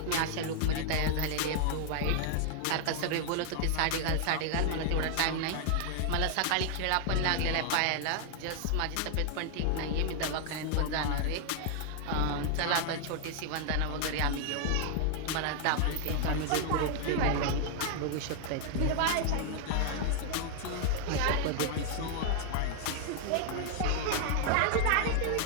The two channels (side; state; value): both; different; correlation 0.00